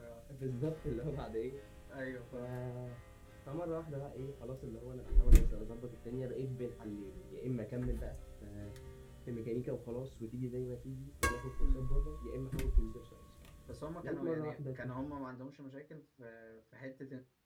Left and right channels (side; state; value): both; identical; correlation 1.00